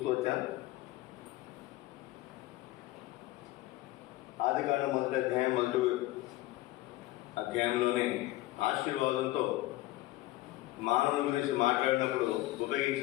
వచ్చాం. ఆదికాండం మొదటి అధ్యాయంలోనే ఆశీర్వాదంతో మానవుని గురించి మాట్లాడినప్పుడు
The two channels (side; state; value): right; quieter; 17.4 dB